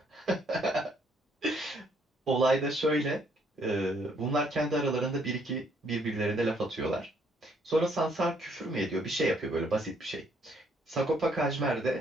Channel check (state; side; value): normal; both; correlation 0.68